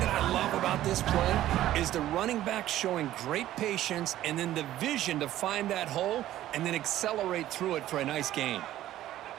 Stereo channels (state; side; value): quieter; left; 13.6 dB